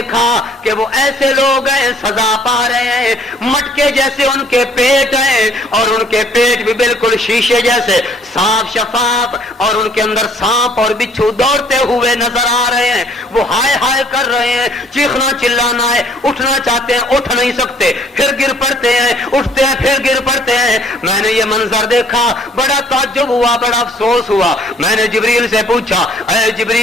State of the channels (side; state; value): both; normal; correlation 0.59